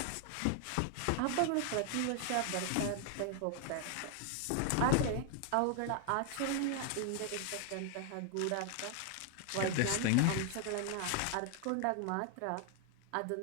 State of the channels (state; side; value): different; both; correlation 0.00